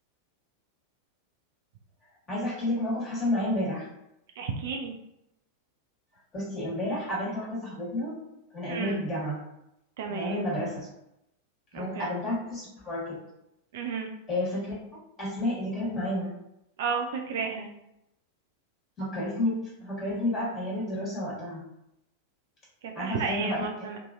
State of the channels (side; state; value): both; normal; correlation 0.19